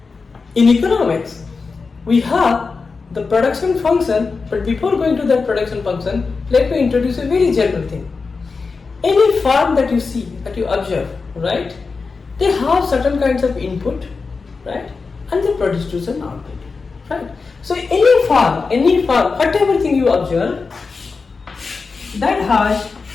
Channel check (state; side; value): quieter; right; 4.5 dB